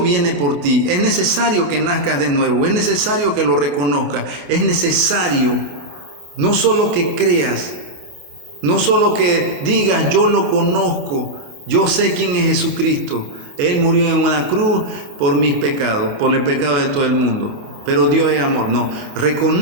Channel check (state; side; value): late; left; 29 ms